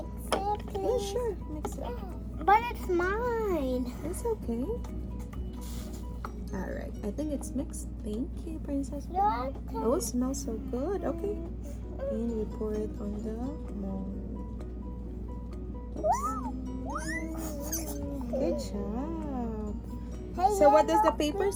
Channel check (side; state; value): both; identical; correlation 1.00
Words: Yeah, please? sure. Mix it. But it's mine. It's okay. All right. I think it's mixed. Thank you, Princess. Look. Oh, it smells so good. Okay. And we pour it on the mold. Good job. Hey, So what does the paper